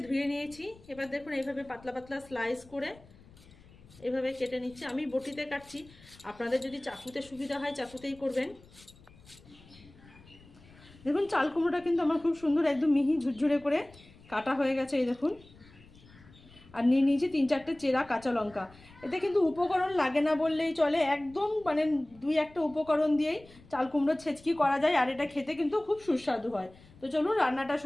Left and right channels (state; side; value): noise; left; rumble, 24 dB below the sound